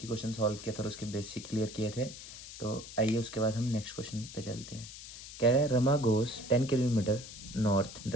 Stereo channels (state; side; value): noise; left; hiss, 13 dB below the sound